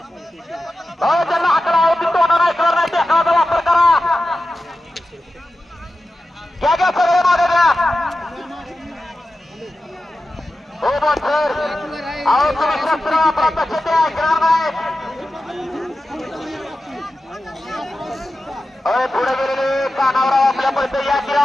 ज्यांना आकडा होती तोंडा नाही करणार नाही त्याचा वापर करा घ्या सगळे मागं घ्या हो बोल सर अहो तुम्ही शस्त्र प्रत्यक्ष ते ऐकणार नाही पुढे गेलेले कानावराव आपल्या पैसे या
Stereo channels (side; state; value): both; normal; correlation 0.93